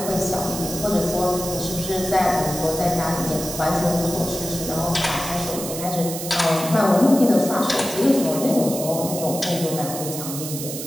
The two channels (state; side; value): noise; right; hiss, 7 dB below the sound